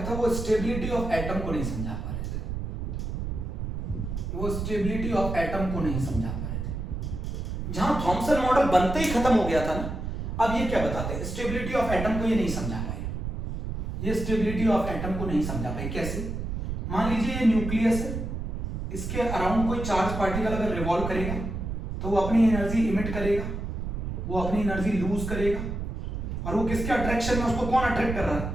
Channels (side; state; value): right; noise; rumble, 4 dB below the sound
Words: था वो स्टेबिलिटी ऑफ एटम को नहीं समझा पा रहे थे, वो स्टेबिलिटी ऑफ एटम को नहीं समझा पा रहे थे। जहां थॉमसन मॉडल बनते ही खत्म हो गया था ना, अब ये क्या बताते हैं? स्टेबिलिटी ऑफ एटम को ये नहीं समझा पाए, ये स्टेबिलिटी ऑफ एटम को नहीं समझा पाए। कैसे? मान लीजिए ये न्यूक्लियस है, इसके अराउंड कोई चार्ज पार्टिकल अगर रिवॉल्व करेगा तो वो अपनी एनर्जी इमिट करेगा, वो अपनी एनर्जी लूज करेगा, और वो किसके अट्रैक्शन में, उसको कौन अट्रैक्ट कर रहा है?